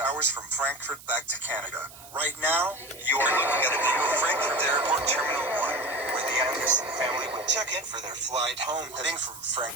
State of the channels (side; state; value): right; noise; hiss, 18 dB below the sound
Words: hours from Frankfurt back to Canada. Right now, you are looking at a view of Frankfurt Airport Terminal 1, where the Anderson family would check in for their flight home, heading from